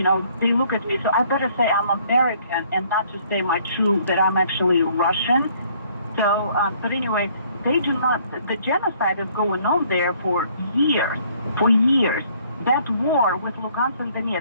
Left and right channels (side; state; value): both; inverted; correlation -0.61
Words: they look at me, so I better say I'm American and not just say that I'm actually Russian. So, but anyway, they do not, the genocide is going on there for years. That war with Lugansk and